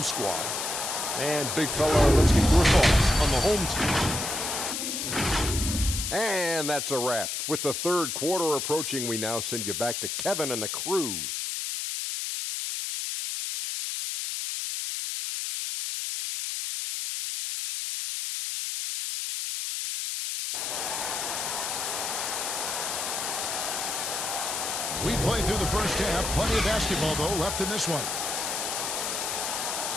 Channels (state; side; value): noise; left; hiss, 2 dB below the sound